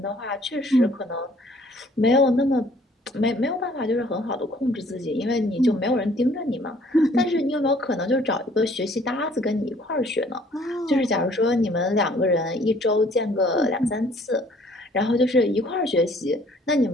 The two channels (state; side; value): normal; both; correlation 0.58